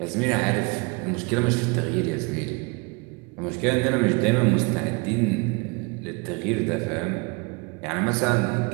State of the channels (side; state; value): left; quieter; 28.5 dB